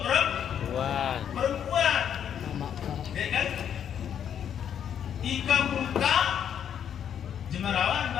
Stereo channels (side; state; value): right; quieter; 8.9 dB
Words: perempuan. Ya kan? Ika muka jemarawan